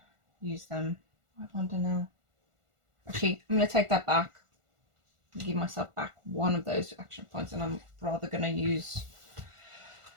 use them. I wonder now. Actually, I'm going to take that back. Give myself back 1 of those action points, and I'm rather going to use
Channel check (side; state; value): left; late; 1.5 ms